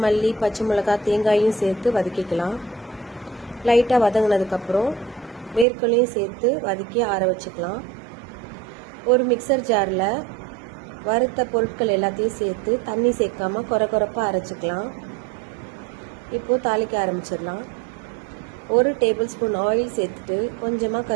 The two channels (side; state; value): left; drops out; at 5.7 s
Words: மல்லி, பச்சை மிளகாய், தேங்காயும் சேர்த்து வதக்கிக்கலாம். லைட்டாக வதங்கினதுக்கப்புறம் வேர்க்கடலையும் சேர்த்து வதக்கி ஆற வச்சுக்கலாம். ஒரு மிக்சர் ஜாரில் வறுத்த பொருட்கள் எல்லாத்தையும் சேர்த்து தண்ணி சேர்க்காம கொரப்பாக அரைச்சிக்கலாம். இப்போது தாளிக்க ஆரம்பிச்சிடலாம். 1 டேபிள் ஸ்பூன் ஆயில் சேர்த்துட்டு கொஞ்சமாக